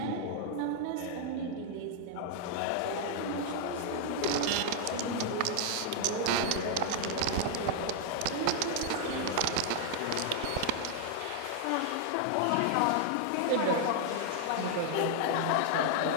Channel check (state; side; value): different; both; correlation 0.00